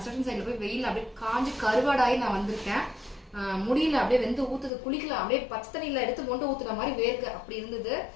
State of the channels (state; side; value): drops out; right; at 4.7 s